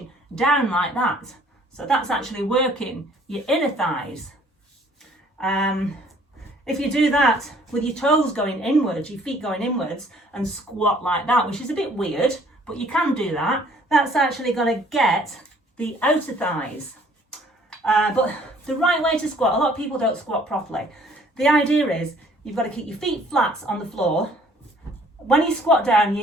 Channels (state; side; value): normal; both; correlation 0.58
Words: down like that. So that's actually working your inner thighs. If you do that with your toes going inwards, your feet going inwards, and squat like that, which is a bit weird, but you can do that, that's actually going to get the outer thighs. But the right way to squat, a lot of people don't squat properly. The idea is you've got to keep your feet flat on the floor. When you squat down,